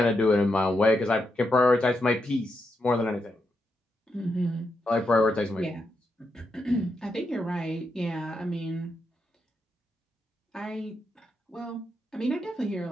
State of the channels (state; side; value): normal; both; correlation 0.83